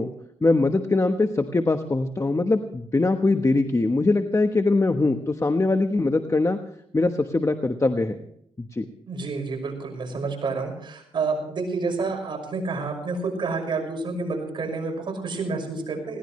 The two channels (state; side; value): normal; both; correlation 0.86